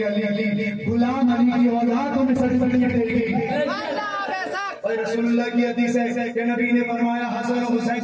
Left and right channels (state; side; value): identical; both; correlation 1.00